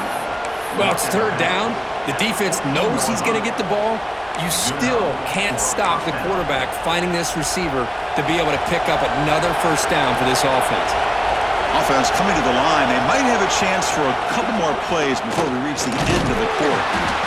Well, it's 3rd down. The defense knows he's going to get the ball. You still can't stop the quarterback finding this receiver to be able to pick up another first down for this offense. Offense coming to the line. They might have a chance for a couple more plays before we reach the end of the quarter.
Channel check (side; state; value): both; identical; correlation 1.00